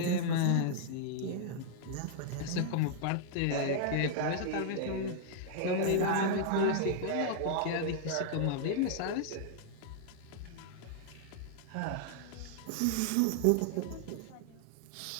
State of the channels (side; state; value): both; different; correlation -0.01